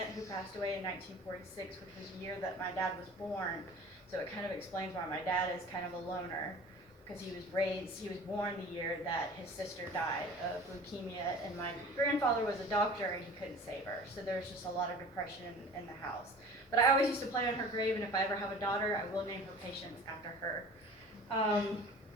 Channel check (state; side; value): normal; both; correlation 0.43